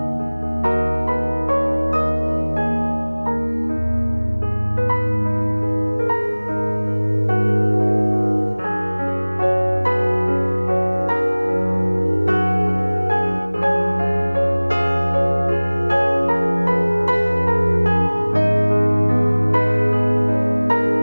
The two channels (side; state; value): both; inverted; correlation -1.00